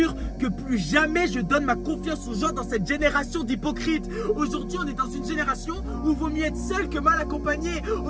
que plus jamais je donne ma confiance aux gens dans cette génération d'hypocrites. Aujourd'hui, on est dans une génération où il vaut mieux être seul que mal accompagné.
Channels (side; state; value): both; identical; correlation 1.00